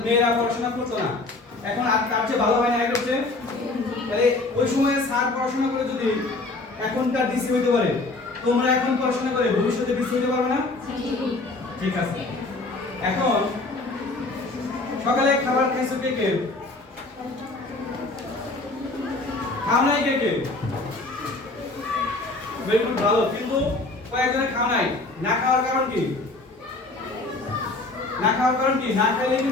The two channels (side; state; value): right; quieter; 3.2 dB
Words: মেয়েরা পড়াশোনা করতো না এখন আর তার চেয়ে ভালো হয় না এটা হচ্ছে তাহলে ওই সময়ে স্যার পড়াশোনা করে যদি এখনকার ডিসি হইতে পারে তোমরা এখন পড়াশোনা করে ভবিষ্যতে ডিসি হইতে পারবে না ঠিক আছে এখন সকালে খাবার খাইছো কে কে খাও নাই কে কে বেগুন ভালো কিন্তু কয়েকজনের খাওয়া নাই না খাওয়ার কারণ কি না খাওয়ার কারণ কি না খেলে